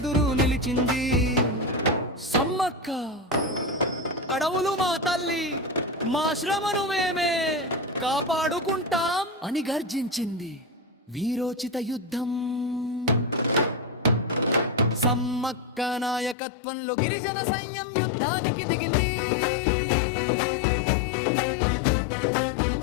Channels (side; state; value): right; drops out; at 16.4 s